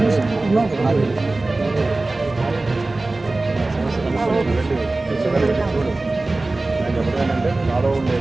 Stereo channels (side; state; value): left; quieter; 3.1 dB